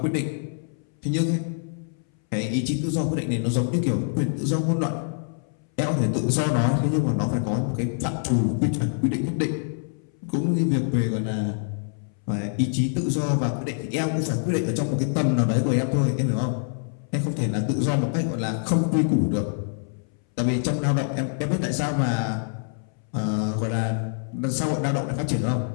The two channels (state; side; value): silent; right; 62 dB below the other